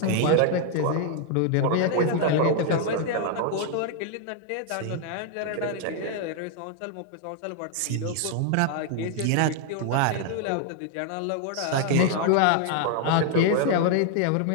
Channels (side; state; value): both; different; correlation 0.00